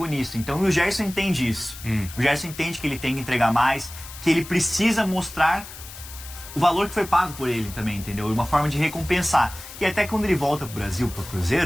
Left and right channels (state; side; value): noise; left; hiss, 14 dB below the sound